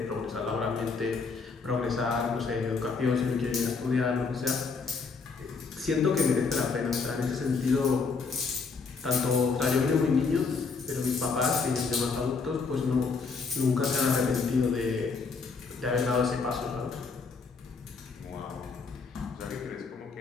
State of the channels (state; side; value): quieter; right; 4.8 dB